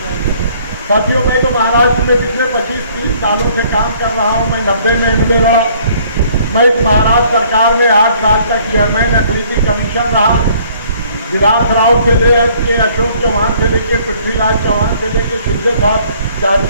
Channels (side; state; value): both; inverted; correlation -0.59